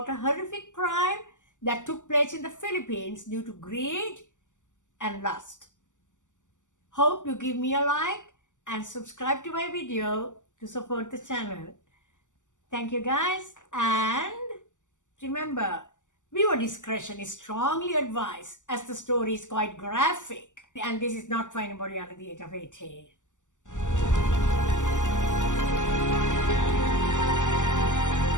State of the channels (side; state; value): right; late; 0.86 ms